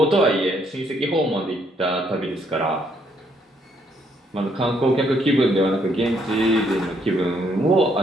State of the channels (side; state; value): both; normal; correlation 0.70